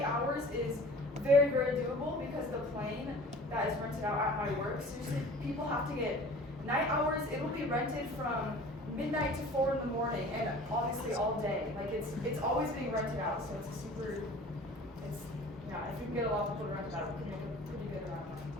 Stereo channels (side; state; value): both; normal; correlation 0.44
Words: hours is very, very doable, because the plane that is rented out at my work, seriously, people have to get night hours. It will be rented from midnight to 4 in the morning, and obviously all day. Like, it's always being rented out, so it's if we can get a lot of people to rent it out, we can make a pretty good amount of money.